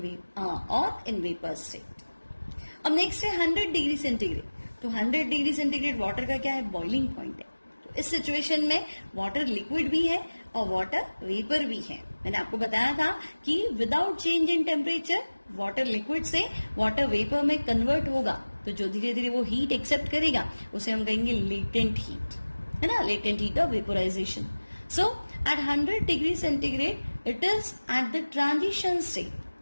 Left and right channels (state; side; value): inverted; both; correlation -1.00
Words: वेपर स्टेट। अब नेक्स्ट है 100 डिग्री सेंटीग्रेड। तो 100 डिग्री सेंटीग्रेड वाटर का क्या है, बॉइलिंग पॉइंट है। तो इस सिचुएशन में वाटर लिक्विड भी है और वाटर वेपर भी है। मैंने आपको बताया था कि without change in temperature water liquid से वाटर वेपर में कन्वर्ट होगा, तो जो धीरे धीरे वो हीट एक्सेप्ट करेगा उसे हम कहेंगे लेटेंट हीट, है ना, latent heat of vaporisation. So at 100 degree centigrade it is at the transition